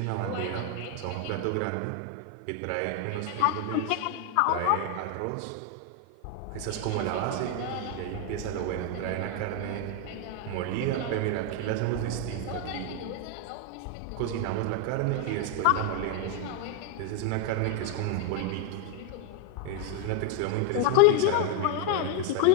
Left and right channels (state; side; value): different; both; correlation 0.01